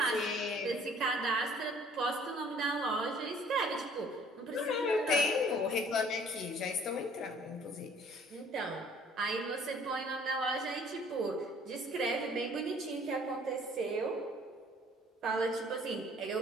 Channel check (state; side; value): normal; both; correlation 0.56